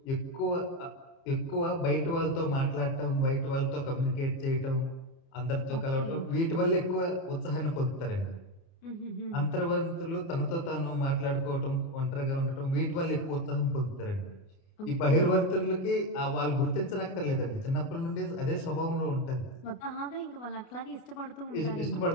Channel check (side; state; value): right; late; 30 ms